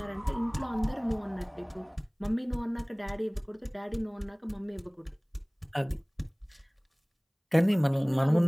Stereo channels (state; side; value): identical; both; correlation 1.00